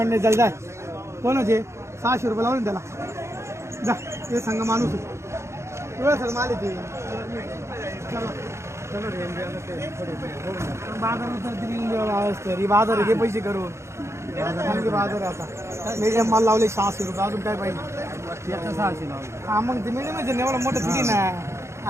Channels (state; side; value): late; left; 0.13 ms